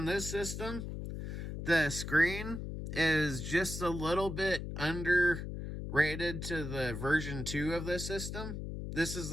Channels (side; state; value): left; noise; hum, 6 dB below the sound